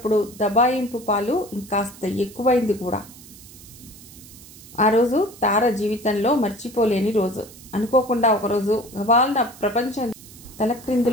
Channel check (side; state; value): right; noise; hiss, 19 dB below the sound